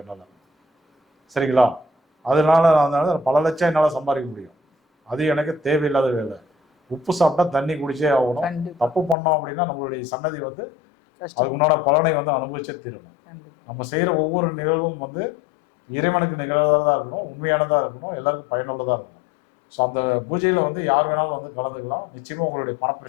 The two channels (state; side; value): drops out; right; at 9.2 s